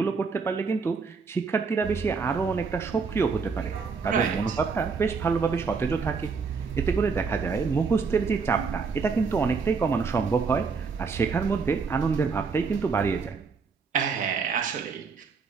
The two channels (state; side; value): quieter; left; 5.1 dB